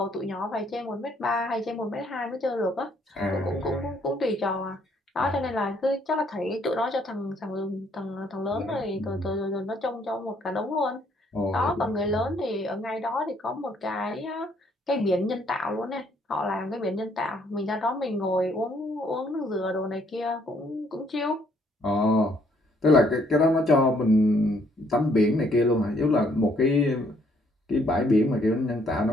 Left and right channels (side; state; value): both; normal; correlation 0.66